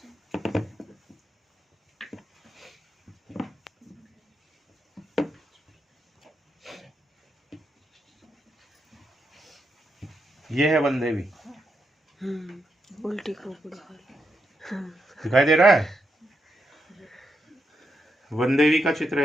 यह है वन देवी। उल्टी खोपड़ी दिखाई दे रहा है? वन देवी का चित्र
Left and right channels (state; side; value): normal; both; correlation 0.83